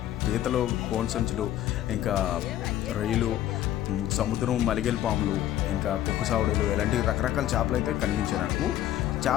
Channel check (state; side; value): quieter; right; 12.6 dB